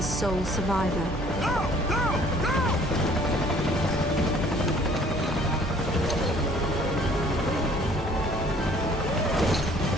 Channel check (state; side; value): normal; both; correlation 0.56